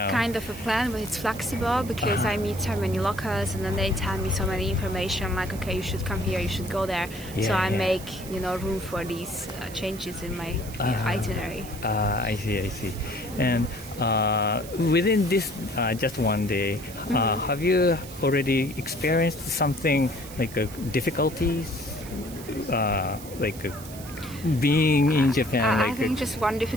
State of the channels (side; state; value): right; noise; hiss, 16 dB below the sound